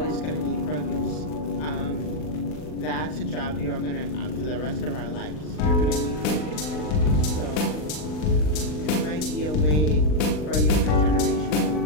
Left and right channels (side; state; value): right; late; 40 ms